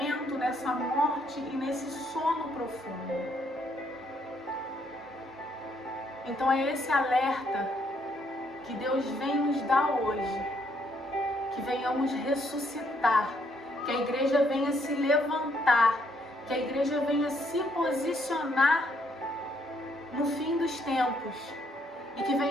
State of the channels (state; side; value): normal; both; correlation 0.71